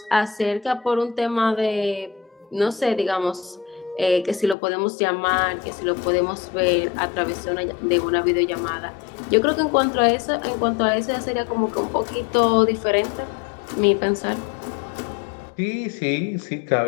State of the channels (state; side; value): drops out; right; at 4.5 s